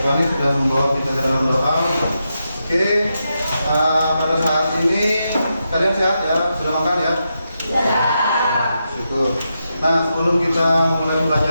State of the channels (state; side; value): inverted; both; correlation -0.86